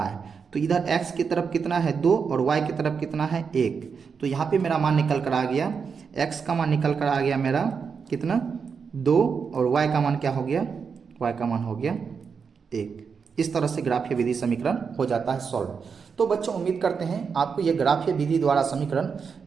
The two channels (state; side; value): quieter; left; 5.9 dB